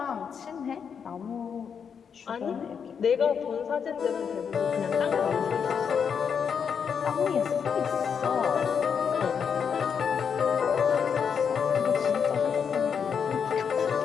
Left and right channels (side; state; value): right; quieter; 6.9 dB